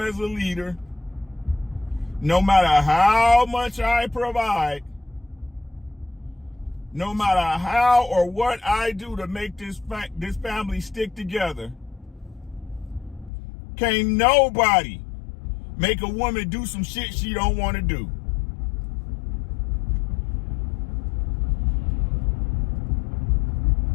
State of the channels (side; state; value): right; drops out; at 13.3 s